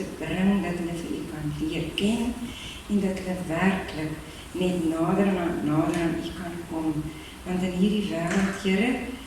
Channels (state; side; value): identical; both; correlation 1.00